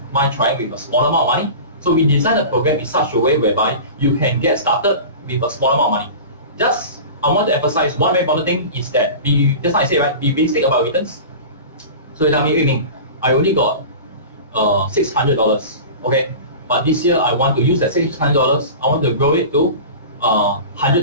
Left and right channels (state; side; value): inverted; both; correlation -0.34